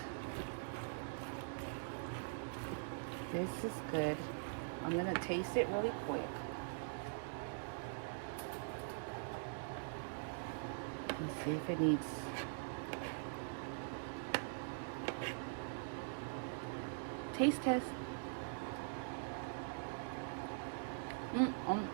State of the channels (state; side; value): silent; left; digital silence